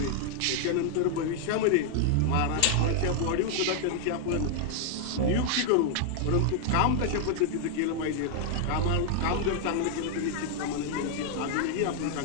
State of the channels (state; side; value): different; both; correlation 0.00